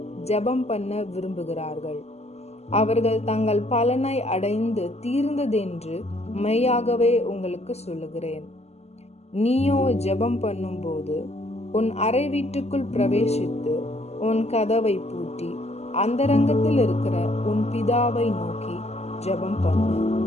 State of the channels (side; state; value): right; late; 0.30 ms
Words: ஜெபம் பண்ண விரும்புகிறார்கள். அவர்கள் தங்கள் பலனை அடைந்து தீர்ந்ததென்று மெய்யாகவே உங்களுக்கு சொல்லுகிறேன். நீயோ ஜெபம் பண்ணும் போது உன் அறை வீட்டுக்குள் பிரவேசித்து உன் கதவை பூட்டி அந்தரங்கத்தில் இருக்கிற உன் பிதாவை நோக்கி ஜெபம் பண்ணு.